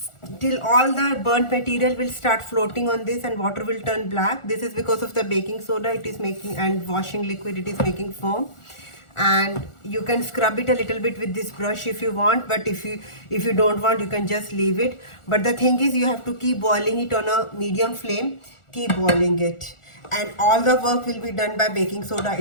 till all the burnt material will start floating on this and water will turn black. This is because of the baking soda it is making, and washing liquid it is making foam. And you can scrub it a little bit with this brush if you want, but if you don't want, you can just leave it. But the thing is, you have to keep boiling it on a medium flame. Keep boiling it, and all the work will be done by baking soda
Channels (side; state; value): right; late; 1.4 ms